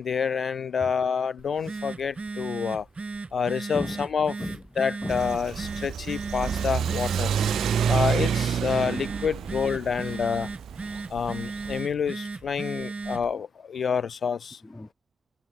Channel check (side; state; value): both; normal; correlation 0.77